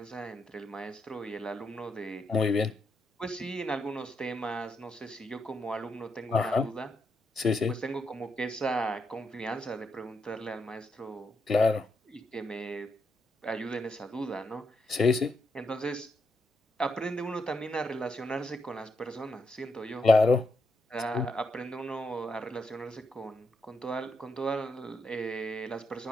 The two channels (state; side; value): normal; both; correlation 0.81